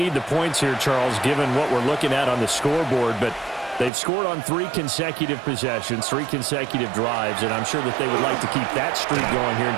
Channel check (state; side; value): drops out; left; at 3.9 s